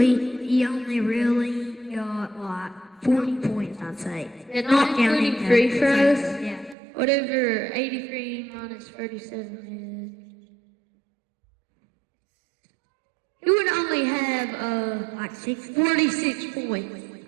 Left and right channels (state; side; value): drops out; left; at 6.8 s